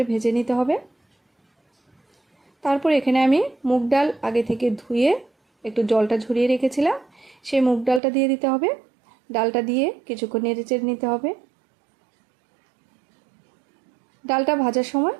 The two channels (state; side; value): drops out; left; at 8.0 s